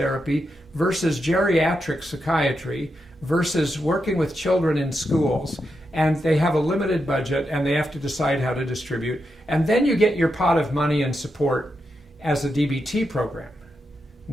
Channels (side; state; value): both; normal; correlation 0.85